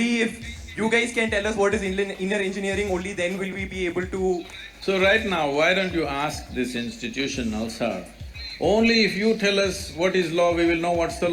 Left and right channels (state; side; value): identical; both; correlation 1.00